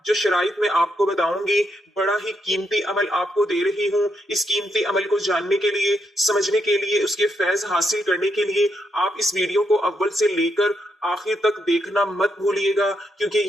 جو شرائط میں آپ کو بتاؤں گی۔ بڑا ہی قیمتی عمل آپ کو دے رہی ہوں۔ اس قیمتی عمل کو جاننے کے لیے، سمجھنے کے لیے، اس کے فیض حاصل کرنے کے لیے آپ اس ویڈیو کو اول سے لے کر آخر تک دیکھنا مت بھولیے گا، کیونکہ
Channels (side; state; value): both; normal; correlation 0.79